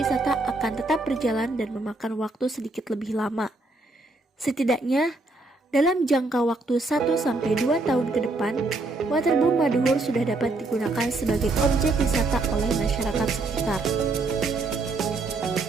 akan tetap berjalan dan memakan waktu sedikit lebih lama. Setidaknya, dalam jangka waktu 1-2 tahun ke depan, Waterboom Maduhur sudah dapat digunakan sebagai objek wisata oleh masyarakat sekitar.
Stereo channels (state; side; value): quieter; left; 3.2 dB